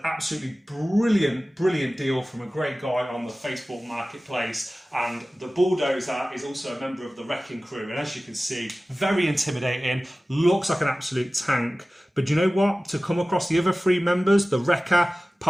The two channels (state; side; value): normal; both; correlation 0.97